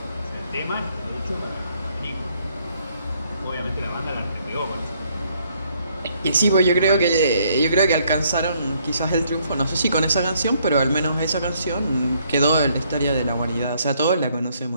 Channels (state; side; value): inverted; both; correlation -0.68